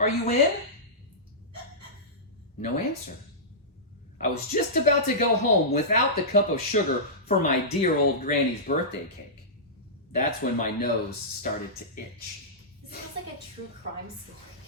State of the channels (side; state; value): both; normal; correlation -0.16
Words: you in?" No answer. I was just about to go home without the cup of sugar for my dear old granny's birthday cake. That's when my nose started to itch. This feels like a true crime story.